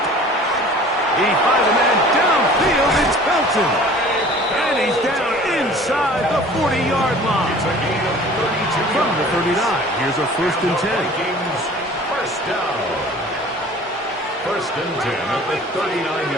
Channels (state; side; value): normal; both; correlation 0.46